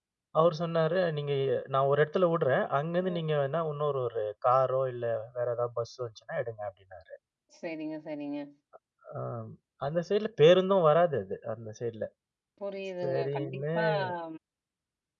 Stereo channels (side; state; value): both; identical; correlation 1.00